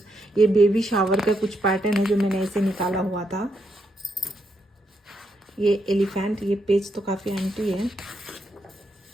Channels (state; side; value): normal; both; correlation 0.79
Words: ये बेबी शावर का कुछ पैटर्न है जो मैंने ऐसे निकाला हुआ था। ये एलिफेंट, ये पेज तो काफ़ी एंटी है।